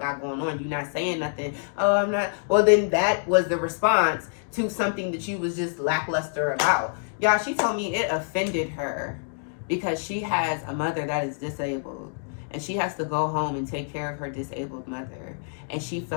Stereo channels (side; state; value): right; silent; digital silence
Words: going on. You not saying nothing. Oh, I'm not. Well, then that was the response to something that you was just lackluster about. Y'all, she told me it offended her because she has a mother that is disabled and she has to go home and take care of her disabled mother. And she